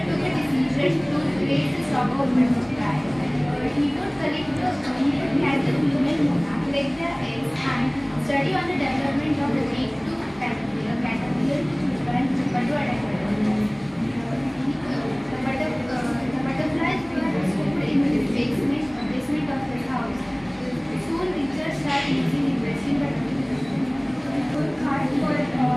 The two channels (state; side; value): noise; left; rumble, 26 dB below the sound